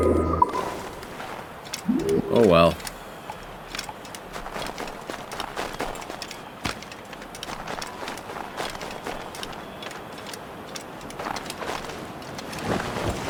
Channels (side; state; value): both; identical; correlation 1.00